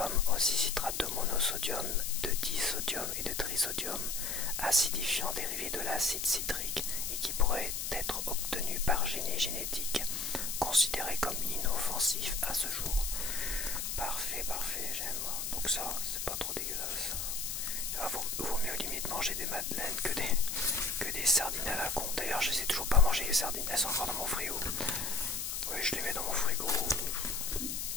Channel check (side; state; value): left; noise; hiss, 3 dB below the sound